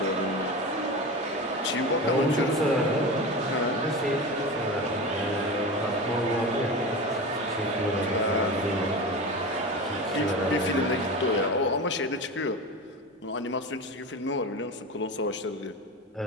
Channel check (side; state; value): both; normal; correlation 0.27